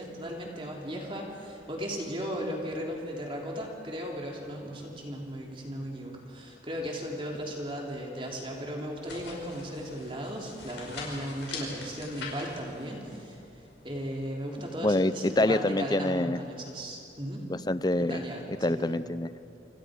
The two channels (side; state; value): both; normal; correlation 0.63